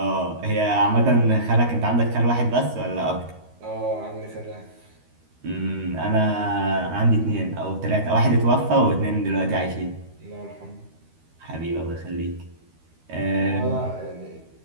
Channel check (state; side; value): late; left; 13 ms